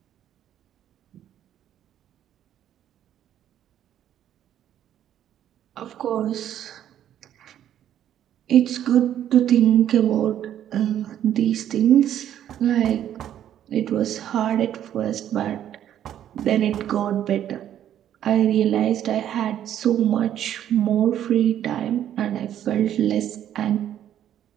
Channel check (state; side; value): quieter; left; 10.8 dB